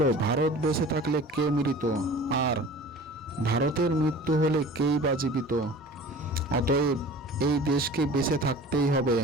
ভারত বেঁচে থাকলে কে মৃত, আর ভারতের মৃত্যু হলে কেই বা জীবিত। অতএব এই দেশকে বেঁচে থাকতেই হবে।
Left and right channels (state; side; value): normal; both; correlation 0.42